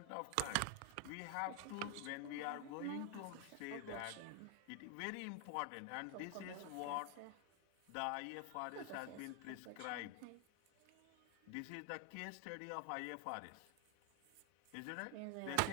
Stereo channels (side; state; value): both; different; correlation 0.01